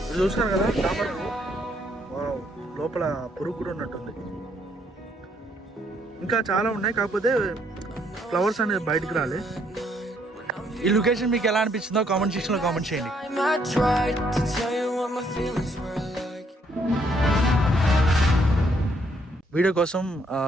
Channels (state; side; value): normal; both; correlation 0.70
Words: చూసినారు కదా తామర పువ్వు, లోపల పురుగు కూడా ఉన్నట్టుంది. ఇంకా చాలా ఉన్నాయి, కాకపోతే ఫ్లవర్స్ అనేది బయటకు రాలే. ఈ లొకేషన్ మీకు ఎలా అనిపించిందో కామెంట్ సెక్షన్ లో కామెంట్ చేయండి. వీడియో కోసం